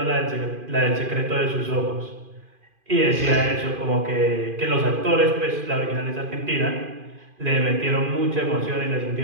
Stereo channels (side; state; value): left; late; 2.5 ms